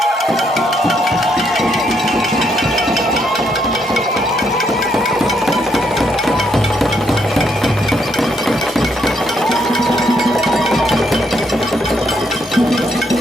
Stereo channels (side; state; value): both; normal; correlation 0.74